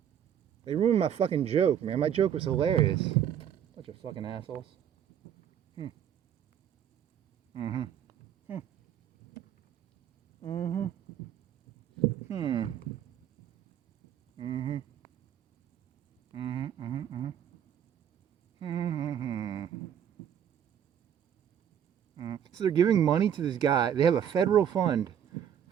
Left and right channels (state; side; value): quieter; left; 9.3 dB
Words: They ruined my fucking joke, man. My joke was hilarious. Bunch of fucking assholes. So they're giving money to this guy. They have a federal fund